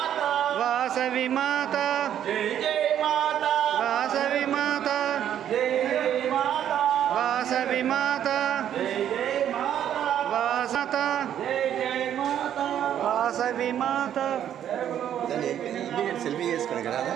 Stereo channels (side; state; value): left; quieter; 10.2 dB